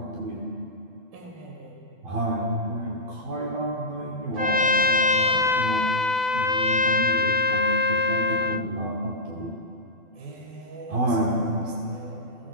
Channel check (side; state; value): left; late; 12 ms